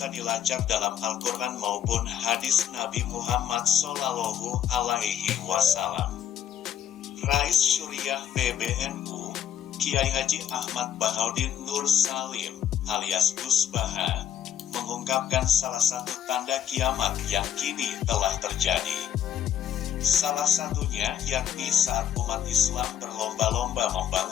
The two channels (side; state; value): right; quieter; 9.8 dB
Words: dilacak dalam Al-Quran maupun hadis Nabi Muhammad Sallallahu Alaihi Wasallam. Rais Syuriah PBNU, Kiai Haji Ahmad Bahaudin Nur Salim, alias Gus Baha, mengungkapkan salah satu tanda kiamat yang kini telah terjadi. Salah satunya yakni saat umat Islam berlomba-lomba